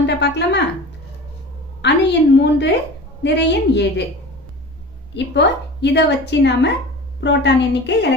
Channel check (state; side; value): normal; both; correlation 0.36